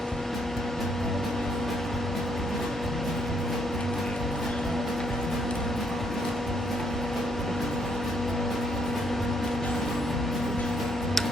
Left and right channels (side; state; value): both; normal; correlation 0.72